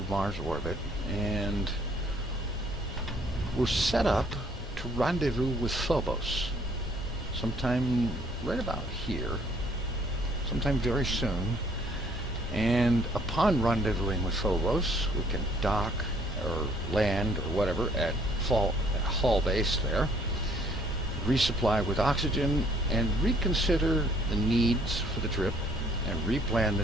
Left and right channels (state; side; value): normal; both; correlation 0.62